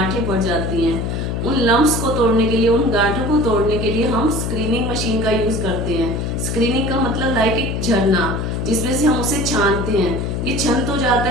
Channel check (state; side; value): noise; left; hum, 2 dB below the sound